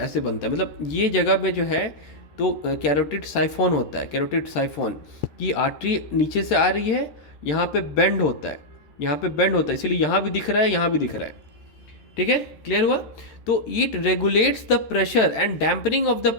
बनता है, मतलब ये जगह में जो है तो कैरोटिड साइफोन होता है, कैरोटिड साइफोन की आर्टरी नीचे से आ रही है, यहाँ पे बेंड होता है, यहाँ पे बेंड होता है, इसलिए यहाँ भी दिख रहा है, यहाँ भी दिख रहा है। ठीक है, क्लियर हुआ। तो it regulates the pressure and dampening of the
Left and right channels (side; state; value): right; late; 13 ms